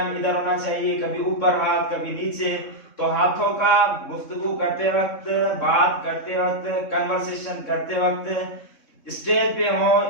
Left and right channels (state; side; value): late; right; 3.6 ms